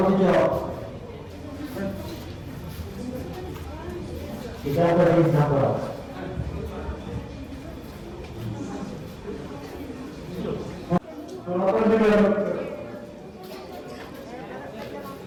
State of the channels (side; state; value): both; identical; correlation 1.00